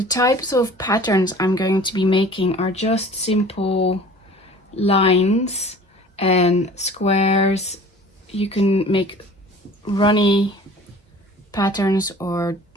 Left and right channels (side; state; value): both; normal; correlation 0.46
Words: types of patterns I'm going to be making are just simple lines and squares. You can make runny patterns or